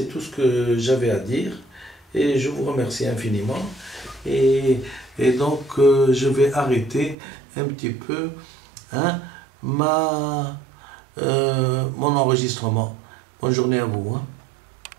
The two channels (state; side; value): drops out; left; at 7.2 s